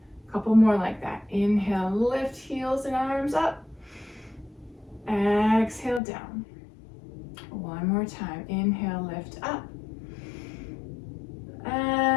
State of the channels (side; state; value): right; drops out; at 6.0 s